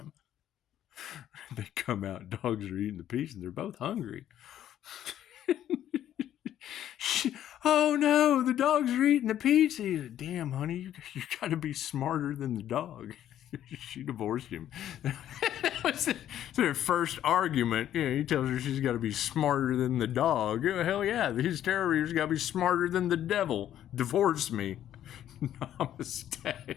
They come out, dogs are eating the pizza, and they're both hungry. Oh no, the dogs are eating the pizza. He said, damn, honey, you got to be smarter than the dog. She divorced him. So their first argument, he tells her she's got to be smarter than the dog. Hell yeah, his Therory's got to be smarter than the devil. Divorce me.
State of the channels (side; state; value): right; quieter; 11.3 dB